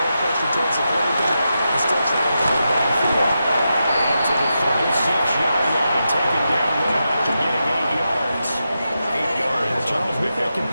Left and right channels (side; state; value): both; inverted; correlation -0.88